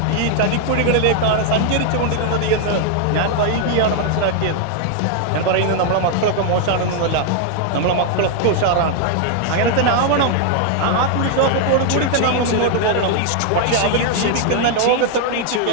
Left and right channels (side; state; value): both; different; correlation 0.00